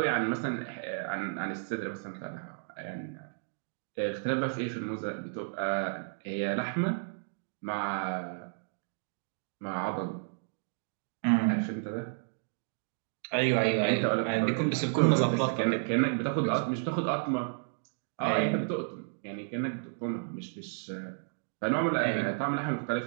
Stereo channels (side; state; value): left; silent; digital silence